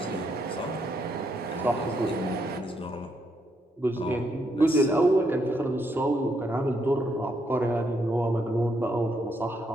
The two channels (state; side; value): normal; both; correlation 0.76